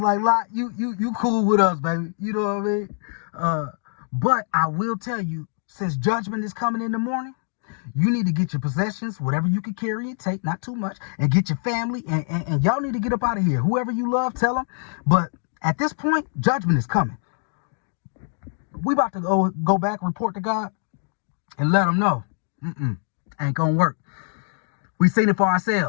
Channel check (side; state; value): right; silent; 57 dB below the other